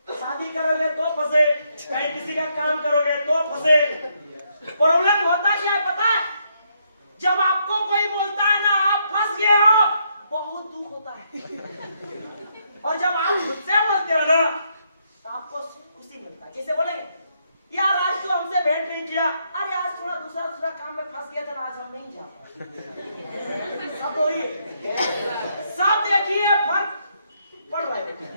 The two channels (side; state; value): both; inverted; correlation -0.75